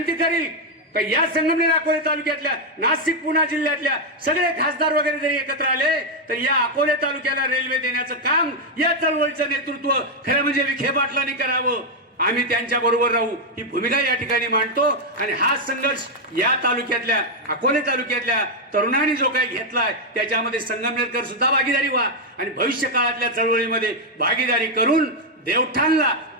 करील का या संगमनेर अकोले तालुक्यातल्या, नाशिक पुणे जिल्ह्यातल्या सगळे खासदार वगैरे जरी एकत्र आले तर या अकोले तालुक्याला रेल्वे देण्याचं काम या चळवळीचं नेतृत्व खरं म्हणजे विखे पाटलांनी करावं. आम्ही त्यांच्या बरोबर राहू ही भूमिका या ठिकाणी मांडतो. आणि हा संघर्ष या तालुक्यातल्या अकोले तालुक्यातल्या तरुणांनी जो काही घेतलाय त्याच्यामध्ये संगमनेरकर सुद्धा भागीदारी व्हा आणि भविष्य काळातल्या चळवळीमध्ये भागीदारी करून देवठाणला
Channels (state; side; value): normal; both; correlation 0.01